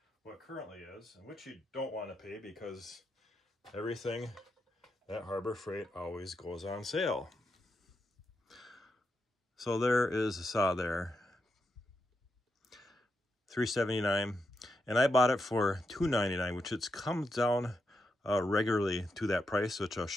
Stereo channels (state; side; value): normal; both; correlation 0.85